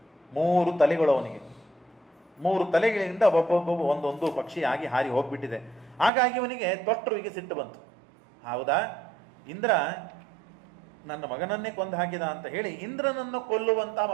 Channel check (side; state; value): left; drops out; at 6.1 s